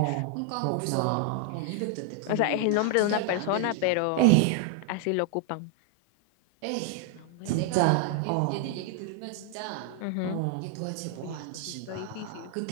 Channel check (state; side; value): different; both; correlation 0.00